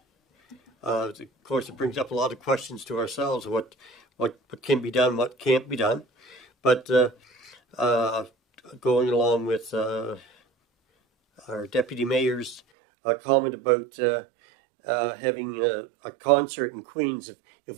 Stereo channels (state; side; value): drops out; left; at 12.6 s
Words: Of course, it brings up a lot of questions to ourselves, what can be done, what can't be done. But going along with our Deputy Mayor's comment about having a concert in Queens, if